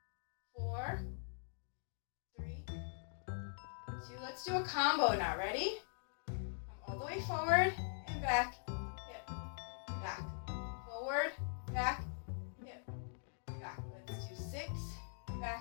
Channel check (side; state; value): right; silent; digital silence